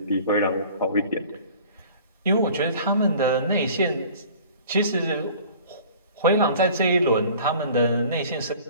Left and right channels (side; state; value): both; inverted; correlation -0.47